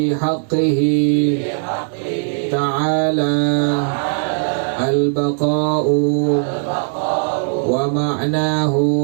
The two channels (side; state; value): left; silent; 67 dB below the other